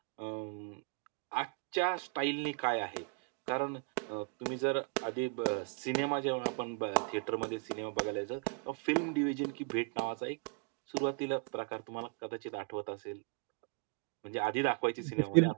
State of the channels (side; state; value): left; quieter; 38.2 dB